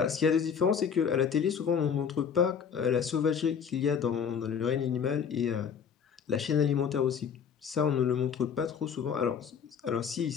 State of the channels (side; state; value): right; quieter; 7.1 dB